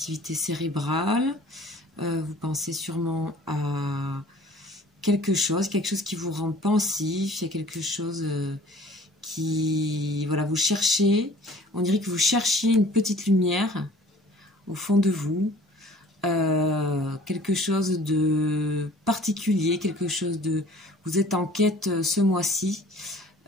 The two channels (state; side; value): normal; both; correlation 0.50